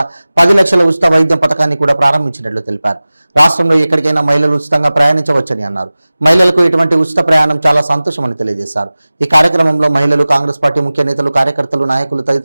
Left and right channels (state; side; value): inverted; both; correlation -0.98